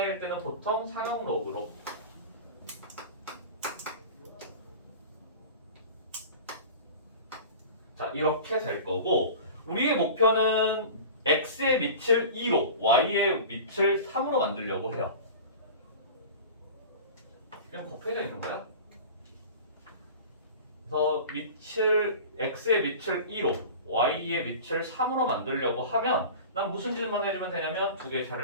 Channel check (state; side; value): inverted; both; correlation -0.36